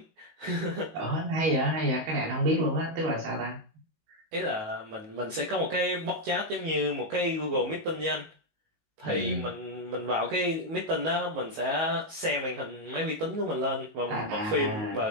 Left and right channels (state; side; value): late; left; 19 ms